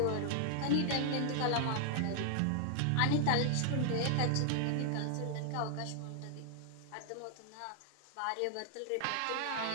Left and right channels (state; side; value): different; both; correlation 0.00